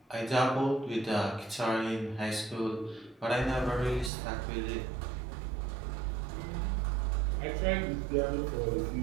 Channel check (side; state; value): left; drops out; at 4.1 s